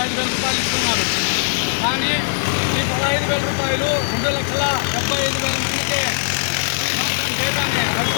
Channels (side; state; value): right; silent; digital silence